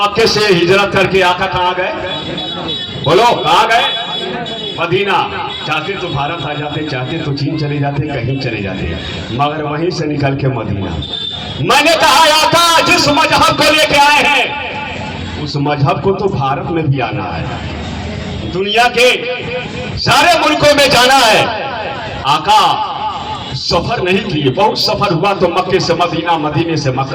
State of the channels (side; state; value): both; identical; correlation 1.00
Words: से हिजरत करके आका कहाँ गए? बोलो कहाँ गए? मदीना। चाहते तो भारत आ जाते, चाहते तो चीन चले जाते, कहीं चले जाते, मगर वहीं से निकल के मदीना। मैंने कहा आका जिस मजहब को लेके आए हैं उस मजहब को तो भारत में भी आना है, दुनिया के सारे मुल्कों में जाना है। आका सफर नहीं किए, बहुत सफर हुआ तो मक्के से मदीना, मदीने से